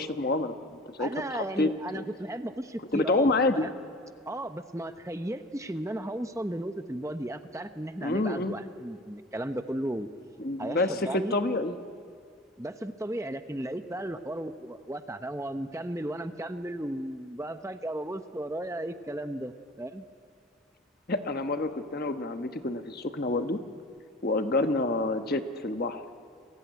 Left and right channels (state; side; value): normal; both; correlation 0.43